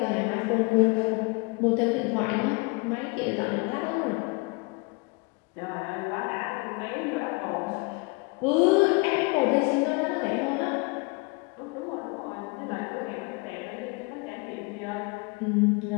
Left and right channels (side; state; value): right; quieter; 28.7 dB